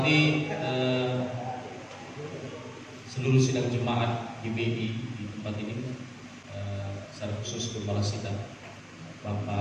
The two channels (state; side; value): identical; both; correlation 1.00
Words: seluruh sidang jemaat GBI di tempat ini, secara khusus Gembala Sidang